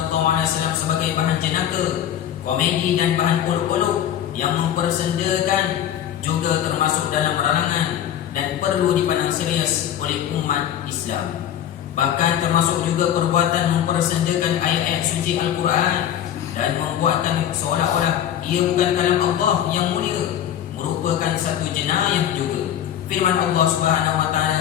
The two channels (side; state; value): right; quieter; 10.5 dB